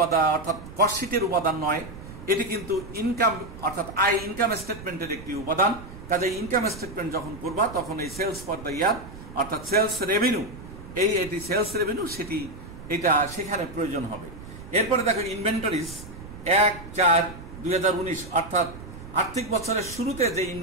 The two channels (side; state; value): right; noise; rumble, 14 dB below the sound